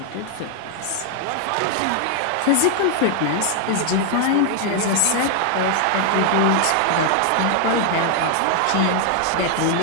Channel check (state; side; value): different; both; correlation 0.00